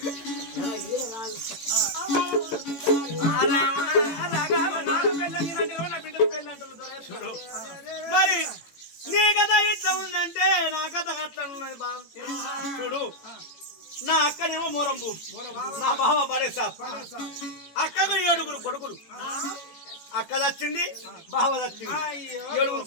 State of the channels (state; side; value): late; right; 18 ms